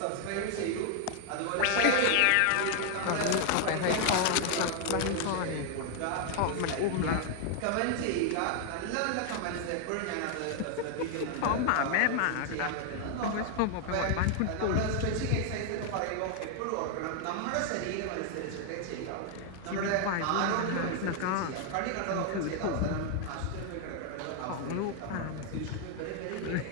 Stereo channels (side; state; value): both; different; correlation 0.00